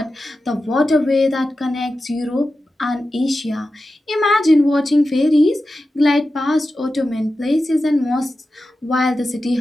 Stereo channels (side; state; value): both; normal; correlation 0.92